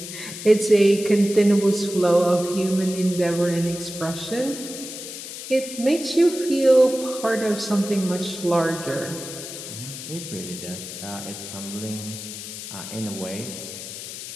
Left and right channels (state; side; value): noise; left; hiss, 10 dB below the sound